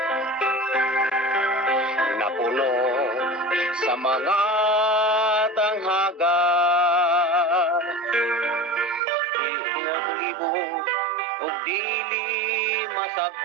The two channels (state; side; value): drops out; left; at 9.0 s